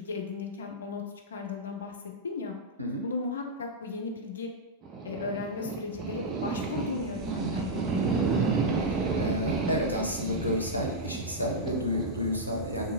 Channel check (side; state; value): both; normal; correlation -0.09